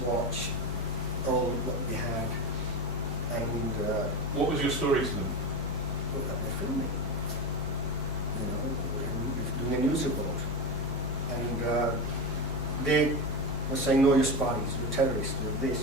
watch all what we had. And what was your story to them? look at they're filming, doing a news report. And they were saying, no, you're spies, you're terrorists, you're this,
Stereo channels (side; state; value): right; noise; rumble, 15 dB below the sound